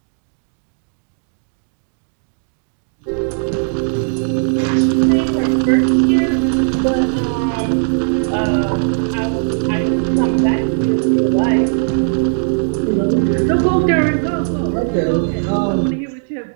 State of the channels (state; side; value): silent; left; digital silence